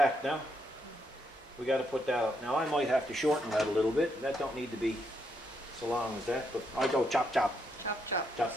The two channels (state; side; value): normal; both; correlation 0.77